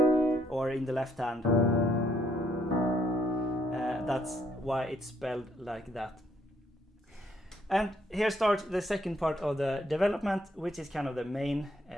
or in the left hand. That's why it's spelled like that. And here starts the second part of the development, which is kind of the main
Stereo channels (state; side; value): normal; both; correlation 0.71